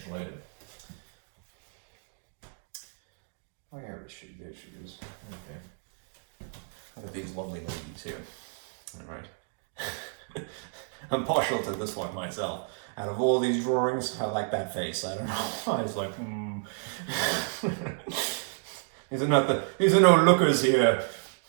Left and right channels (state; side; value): silent; left; 57 dB below the other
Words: later. Where is she? There she is. Okay. Look at these lovely ladies here. All right. I'm partial to this one myself. Out of all these drawings, I like that face. I don't know. I was like, These are no lookers here,